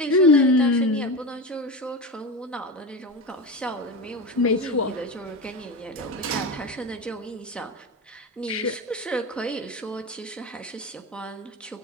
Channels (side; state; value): both; normal; correlation 0.22